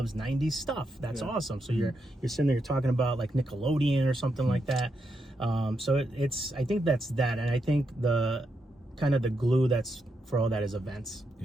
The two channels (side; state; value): both; normal; correlation 0.83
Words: 90s stuff. That's awesome. So you're sitting there, you're talking about like Nickelodeon or something like that. So I think that's that, and I think the kind of the glue that's for all that is events.